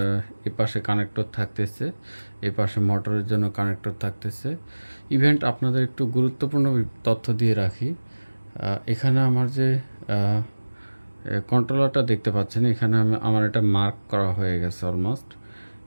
এপাশে কানেক্টর থাকতেছে, এপাশে মোটরের জন্য কানেক্টর থাকতেছে। ইভেন্ট আপনাদের একটু গুরুত্বপূর্ণ তথ্য দিয়ে রাখি। এখানে আমার যে কন্ট্রোলারটা দেখতে পাচ্ছেন, এখানে আমার এটা মার্ক করা হয়ে গেছে অলমোস্ট।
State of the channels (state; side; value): inverted; both; correlation -1.00